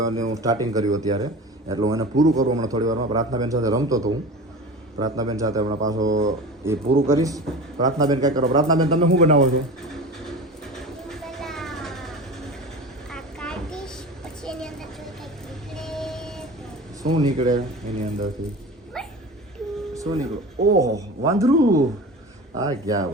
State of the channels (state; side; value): normal; both; correlation 0.33